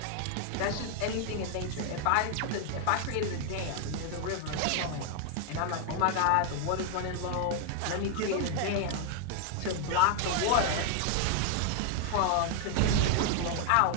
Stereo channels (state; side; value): different; both; correlation 0.00